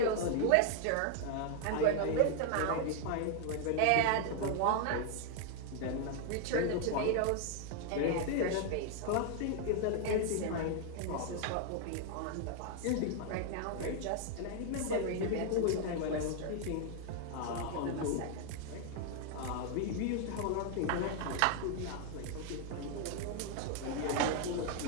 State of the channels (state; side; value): different; both; correlation 0.00